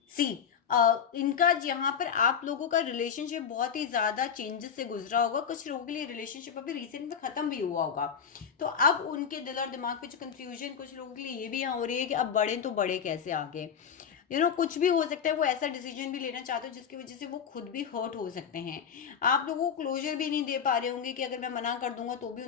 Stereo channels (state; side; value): quieter; right; 7.4 dB